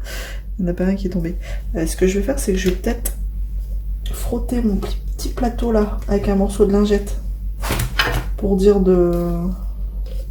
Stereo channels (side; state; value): both; identical; correlation 1.00